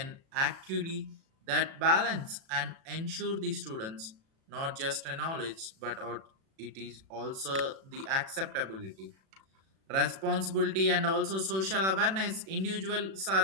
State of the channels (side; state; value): left; late; 37 ms